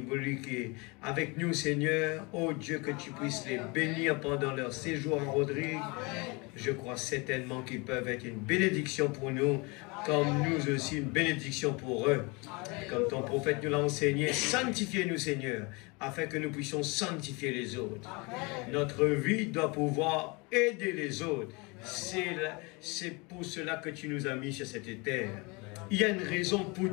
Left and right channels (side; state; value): right; quieter; 27.9 dB